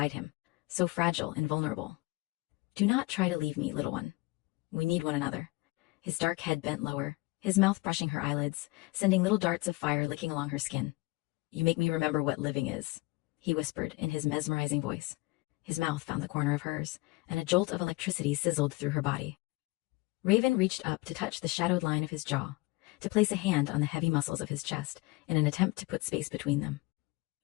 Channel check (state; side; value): quieter; right; 22.8 dB